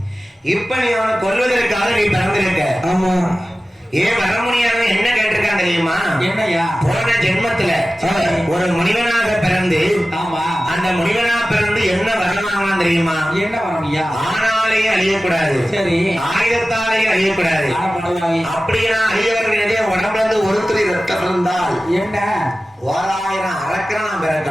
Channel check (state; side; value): normal; both; correlation 0.96